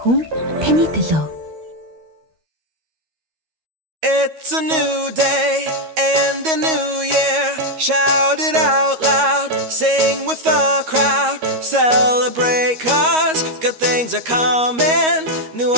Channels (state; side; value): late; left; 13 ms